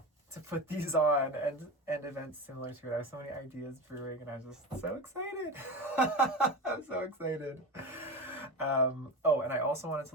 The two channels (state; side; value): normal; both; correlation 0.24